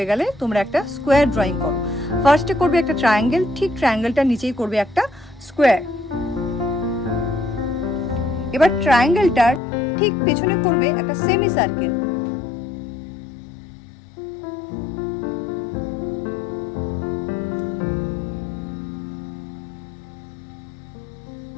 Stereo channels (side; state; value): right; drops out; at 9.6 s